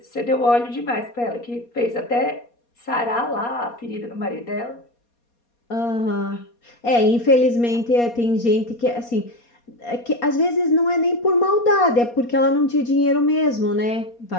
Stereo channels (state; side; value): late; right; 4.2 ms